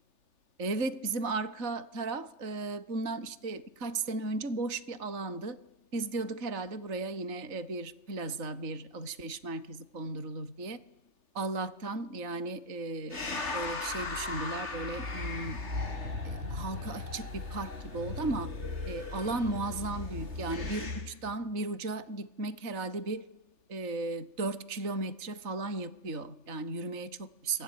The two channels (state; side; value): late; left; 3.4 ms